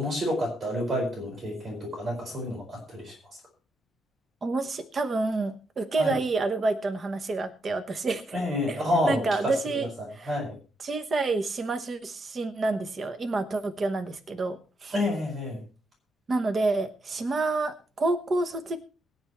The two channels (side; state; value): both; normal; correlation 0.80